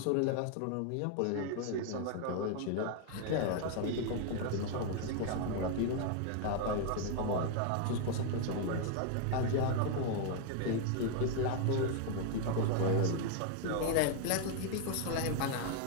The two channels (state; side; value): different; both; correlation 0.00